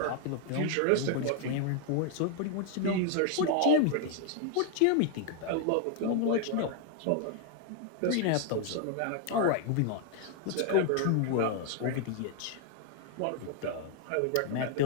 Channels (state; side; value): different; both; correlation 0.01